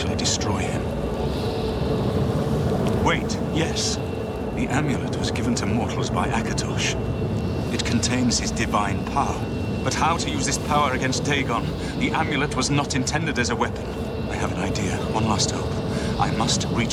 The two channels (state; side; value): identical; both; correlation 1.00